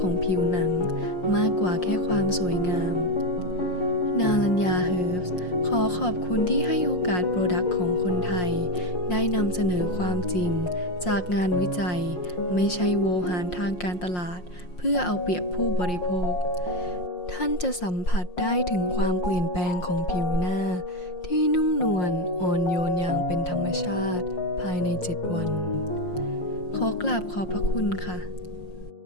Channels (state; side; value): late; right; 5.6 ms